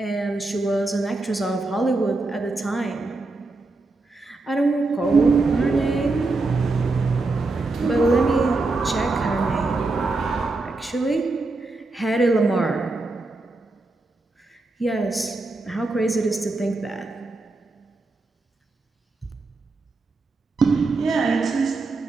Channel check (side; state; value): left; quieter; 3.3 dB